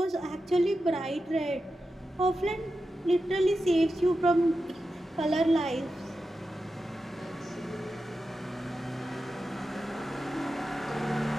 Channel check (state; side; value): normal; both; correlation 0.90